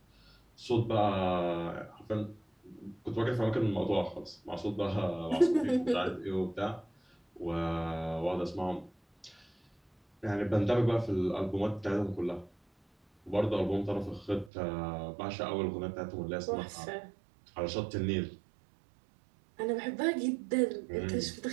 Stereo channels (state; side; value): drops out; left; at 14.5 s